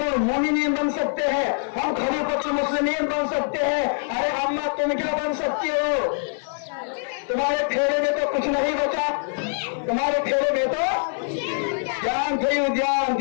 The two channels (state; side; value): silent; right; 57 dB below the other